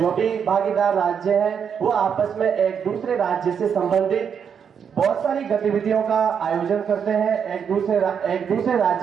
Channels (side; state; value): left; quieter; 7.3 dB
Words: भी भागीदार राज्य हैं वो आपस में एक दूसरे राज्य से संबंधित बहुत सारी गतिविधियों का आयोजन करते हैं। एक दूसरे